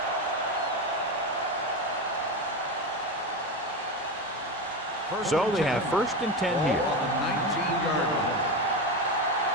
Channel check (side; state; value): both; normal; correlation 0.18